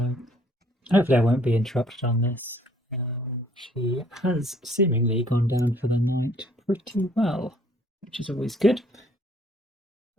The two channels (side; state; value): both; normal; correlation 0.61